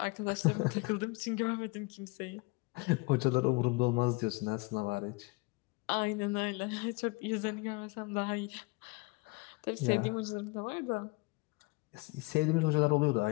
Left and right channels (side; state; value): right; quieter; 26.1 dB